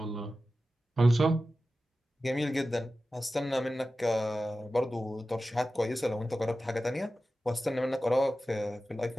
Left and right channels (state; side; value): normal; both; correlation 0.94